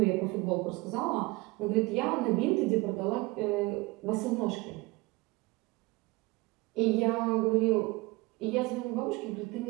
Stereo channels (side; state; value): left; quieter; 23.0 dB